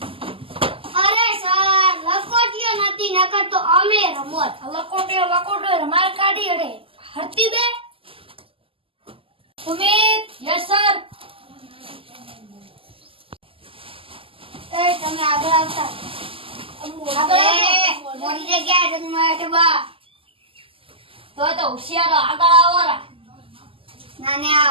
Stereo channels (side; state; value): left; late; 0.26 ms